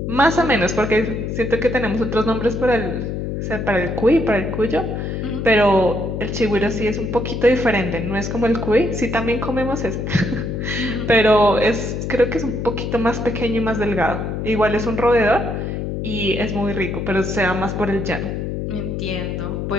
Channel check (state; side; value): noise; left; hum, 3 dB below the sound